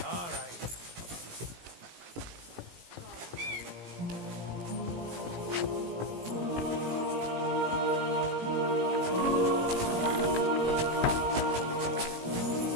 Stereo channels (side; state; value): left; late; 17 ms